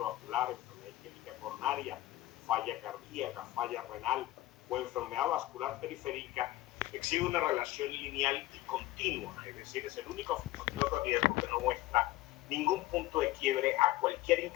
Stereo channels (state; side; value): quieter; right; 17.1 dB